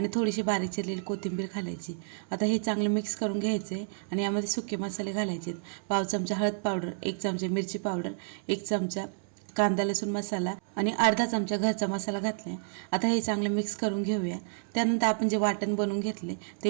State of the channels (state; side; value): silent; left; 58 dB below the other